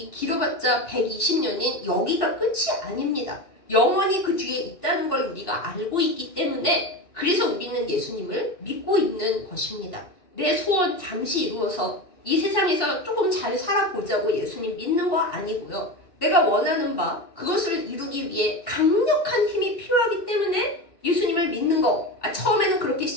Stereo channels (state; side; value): late; right; 2.7 ms